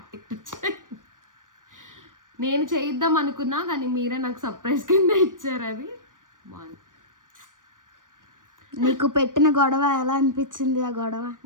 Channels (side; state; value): left; late; 0.88 ms